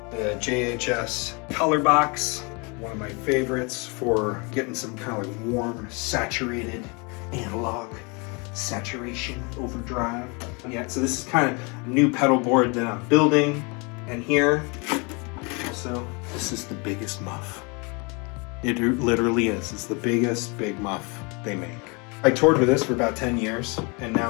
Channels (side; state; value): right; quieter; 30.9 dB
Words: The JHS color box, one of my favorites for getting some kind of like warm, saturated analog saturation overdrive. Yeah, so this is kind of a new pedal board that I'm building. And here, also, this is the biggest muff. It literally is. It's the biggest big muff they make. I toured with this for about 10 years, and